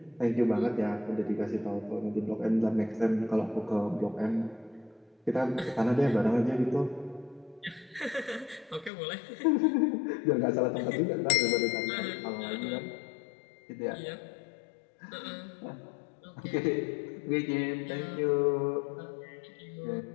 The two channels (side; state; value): right; drops out; at 8.9 s